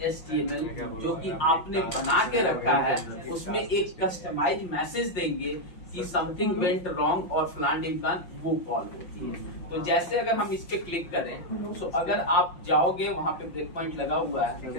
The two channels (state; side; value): late; right; 5.7 ms